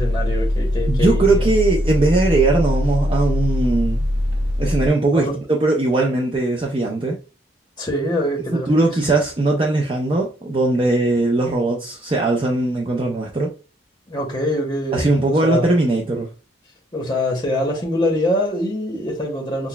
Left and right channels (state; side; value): normal; both; correlation 0.71